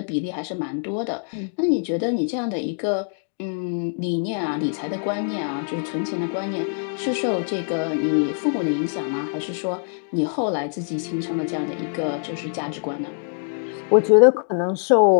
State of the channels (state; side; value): silent; right; digital silence